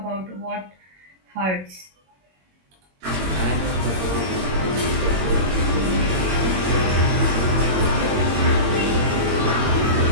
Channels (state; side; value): late; left; 21 ms